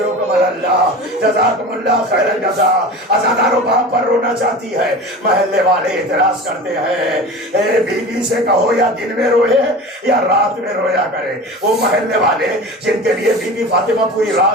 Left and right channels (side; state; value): both; normal; correlation 0.34